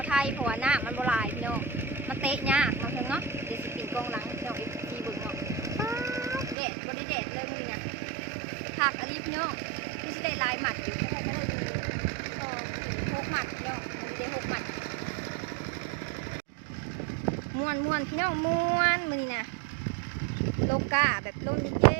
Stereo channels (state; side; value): drops out; left; at 6.6 s